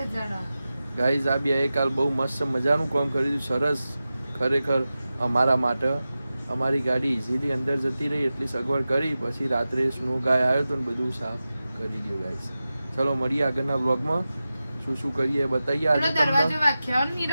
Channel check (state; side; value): inverted; both; correlation -0.94